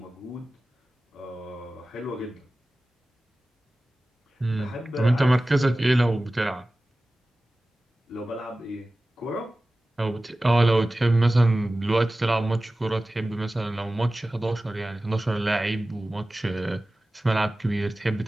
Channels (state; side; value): normal; both; correlation 0.96